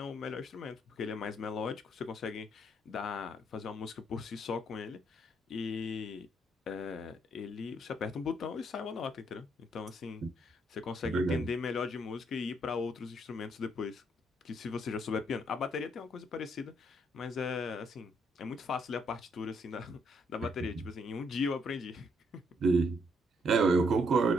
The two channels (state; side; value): normal; both; correlation 0.72